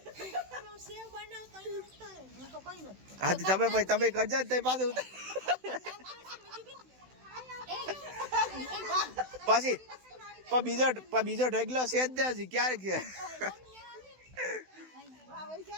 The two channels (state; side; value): late; left; 16 ms